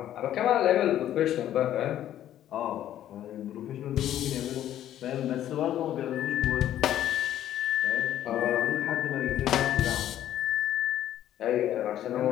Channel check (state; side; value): quieter; right; 11.8 dB